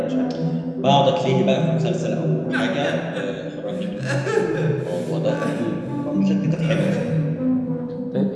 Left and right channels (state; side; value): identical; both; correlation 1.00